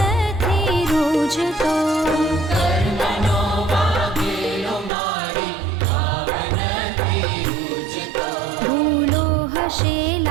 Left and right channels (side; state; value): left; drops out; at 4.9 s